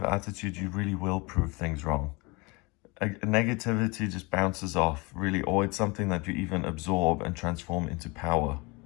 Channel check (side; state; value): right; quieter; 26.9 dB